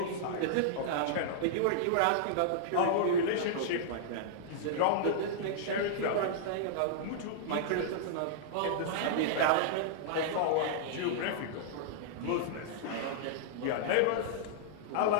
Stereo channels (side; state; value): both; different; correlation -0.02